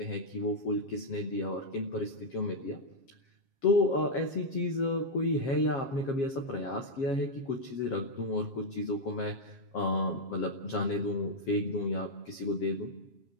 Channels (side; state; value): right; late; 7.4 ms